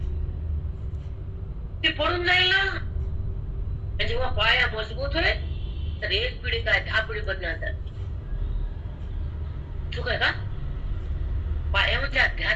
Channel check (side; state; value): both; identical; correlation 1.00